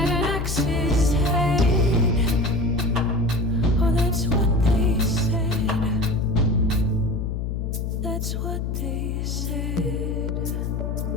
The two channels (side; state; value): left; noise; hum, 2 dB below the sound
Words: an axe's head. Oh, that's what they said. That's what they said.